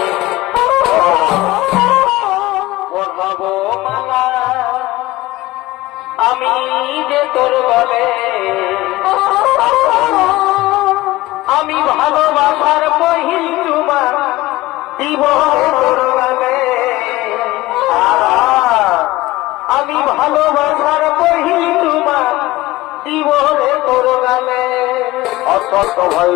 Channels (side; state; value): right; quieter; 18.3 dB